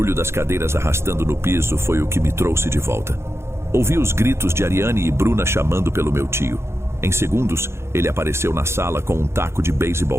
das cadeiras arrastando no piso foi o que me trouxe de volta. Ouvi os gritos de Ariane e Bruna chamando pelo meu tio. Em segundos, ele apareceu na sala com um taco de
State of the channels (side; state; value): left; late; 0.13 ms